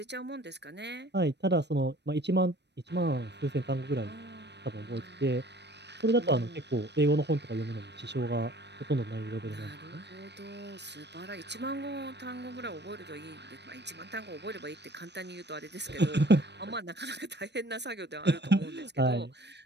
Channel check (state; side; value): late; left; 0.50 ms